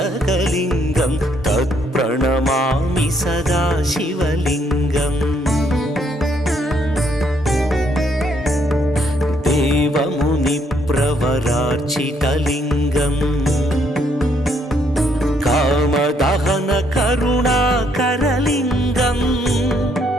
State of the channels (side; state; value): both; normal; correlation 0.70